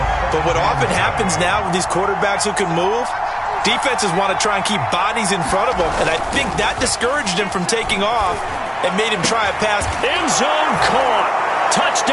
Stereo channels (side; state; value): both; identical; correlation 1.00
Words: But what often happens now with these quarterbacks who can move, defenses want to try and keep bodies in front of them, and I think that discouraged him from taking off and made him try a pass. End zone caught.